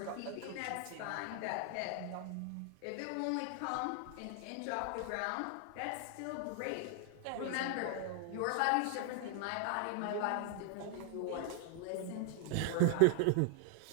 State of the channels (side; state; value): both; different; correlation 0.00